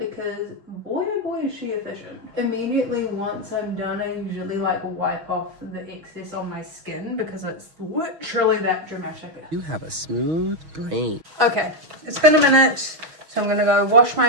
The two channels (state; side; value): late; left; 6.3 ms